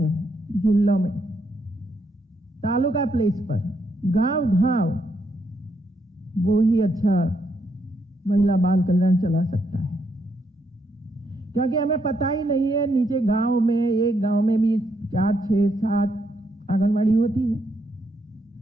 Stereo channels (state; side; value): normal; both; correlation 0.77